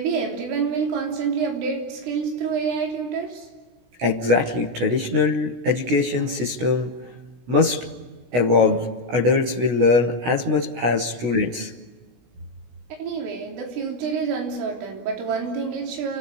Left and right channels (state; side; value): late; left; 16 ms